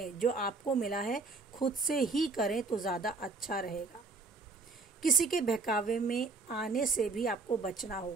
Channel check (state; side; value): quieter; left; 3.9 dB